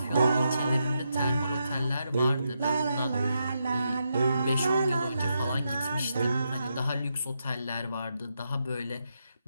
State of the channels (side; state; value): both; inverted; correlation -0.83